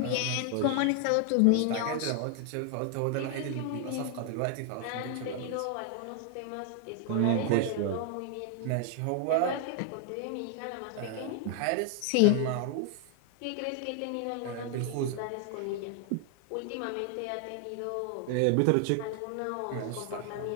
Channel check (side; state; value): both; different; correlation 0.00